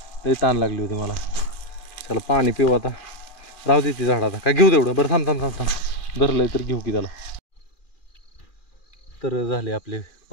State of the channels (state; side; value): late; right; 2.4 ms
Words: लई ताण लागली होती मला. त्याला पाणी पिऊ आता, राहू दे ती झाड आता काय घेऊ तेवढं. बरं थांब थांब थांब थांब धरलंय तर घेऊ की त्याला. तर झाले आपले